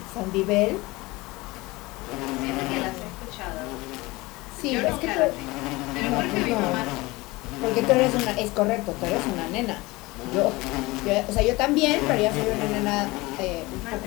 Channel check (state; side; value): quieter; right; 21.9 dB